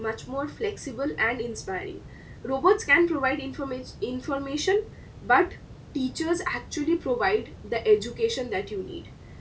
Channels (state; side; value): identical; both; correlation 1.00